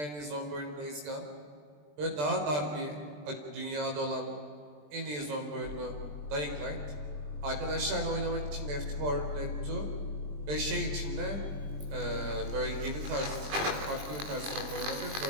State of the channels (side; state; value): left; late; 20 ms